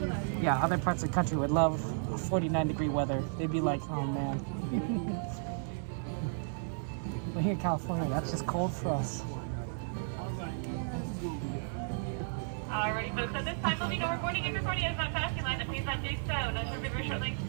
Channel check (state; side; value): silent; left; 55 dB below the other